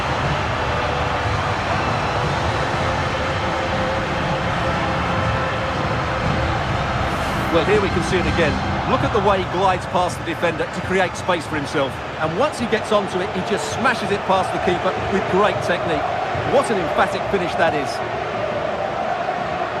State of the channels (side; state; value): both; identical; correlation 1.00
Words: Well, here we can see it again. Look at the way he glides past the defender to create space for himself. And once he gets onto it, he just smashes it past the keeper with great technique. What an emphatic finish that is.